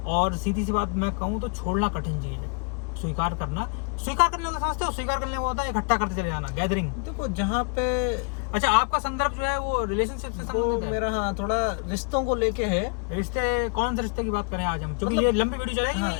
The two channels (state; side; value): quieter; right; 36.0 dB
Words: और सीधी सी बात मैं कहूँ तो छोड़ना कठिन चीज है। स्वीकार करना समझते हो? स्वीकार करने को होता है इकट्ठा करते चले जाना, गैदरिंग। देखो, जहाँ पे अच्छा, आपका संदर्भ जो है वो रिलेशनशिप से संबंधित है? मेरा हाँ, थोड़ा रिश्तों को लेके है। रिश्ते, कौन से रिश्ते की बात करें आज हम? क्योंकि ये लंबी वीडियो चलेगी। हाँ,